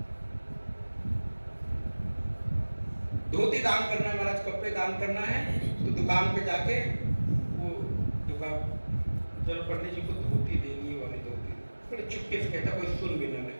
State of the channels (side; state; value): both; inverted; correlation -1.00